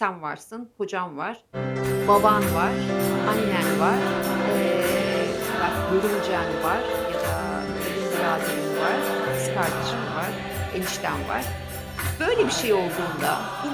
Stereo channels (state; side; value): identical; both; correlation 1.00